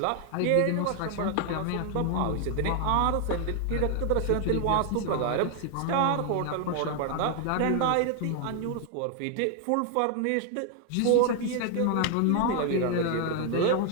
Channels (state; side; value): different; both; correlation 0.00